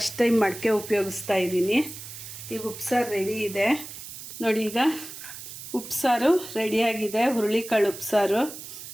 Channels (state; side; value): noise; right; hiss, 12 dB below the sound